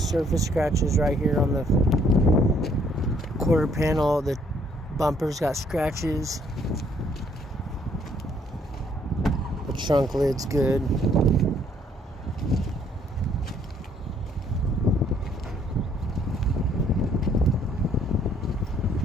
scratches right here on the quarter panel. The bumper's got scratches. The trunk lid's good.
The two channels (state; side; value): normal; both; correlation 0.65